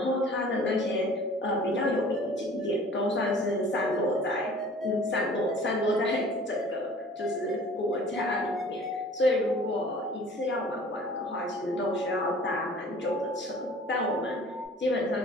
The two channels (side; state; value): both; normal; correlation 0.48